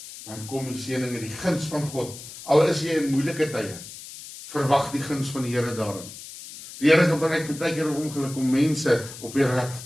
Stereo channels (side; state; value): left; noise; hiss, 14 dB below the sound